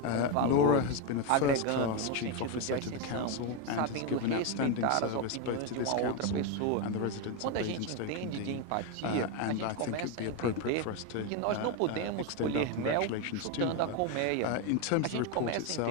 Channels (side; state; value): both; different; correlation 0.02